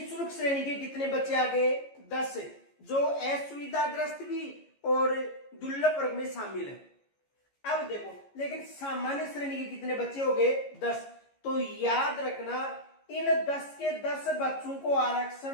श्रेणी के कितने बच्चे आ गए, 10, जो असुविधाग्रस्त भी और दुर्लभ वर्ग में शामिल है। अब देखो, लेकिन सामान्य श्रेणी के कितने बच्चे हो गए, 10। तो याद रखना, इन 10 के 10 बच्चों को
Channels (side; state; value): right; late; 14 ms